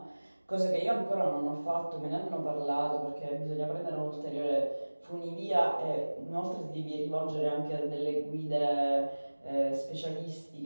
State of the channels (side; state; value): both; inverted; correlation -1.00